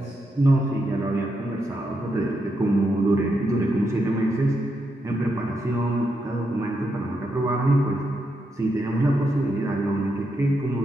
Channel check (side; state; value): both; normal; correlation 0.82